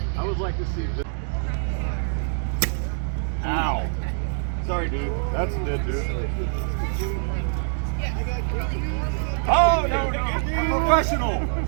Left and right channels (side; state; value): left; silent; digital silence